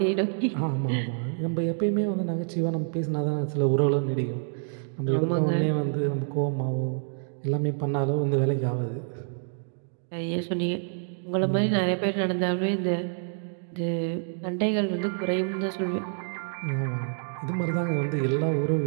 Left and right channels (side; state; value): left; silent; digital silence